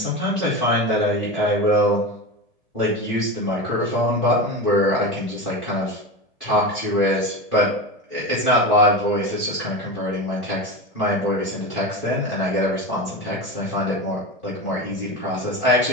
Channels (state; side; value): late; left; 1.7 ms